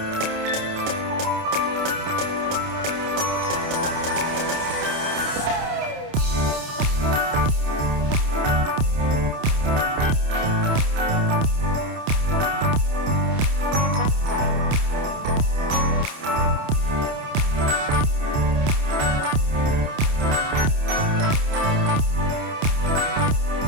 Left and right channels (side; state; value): left; late; 29 ms